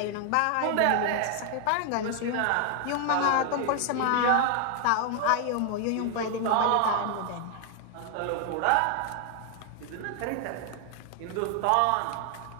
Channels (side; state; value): both; different; correlation 0.00